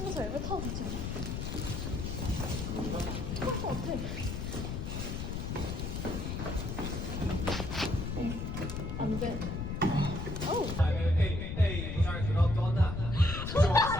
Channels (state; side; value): noise; left; rumble, 4 dB below the sound